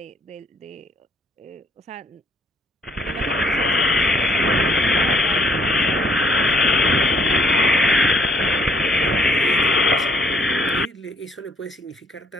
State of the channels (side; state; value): both; normal; correlation 0.65